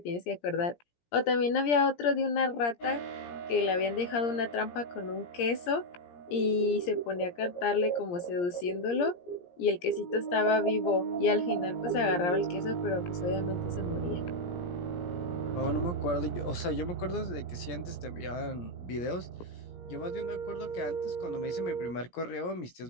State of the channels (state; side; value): late; right; 17 ms